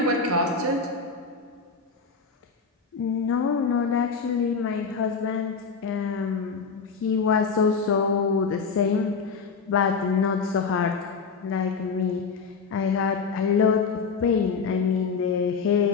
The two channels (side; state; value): right; quieter; 5.2 dB